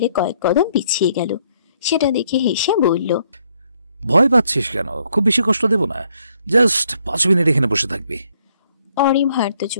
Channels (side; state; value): both; inverted; correlation -0.70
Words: কয়েক কদম পিছিয়ে গেল। সেটা দেখে হেসে বলল, ভয় পাচ্ছিস কেন? খুব বেশি কষ্ট দেব না, জাস্ট 5 মিনিট এখানে বসে থাকবি। অরি ভার্ত